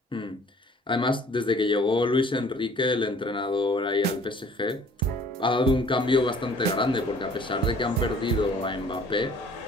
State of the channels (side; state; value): both; normal; correlation 0.54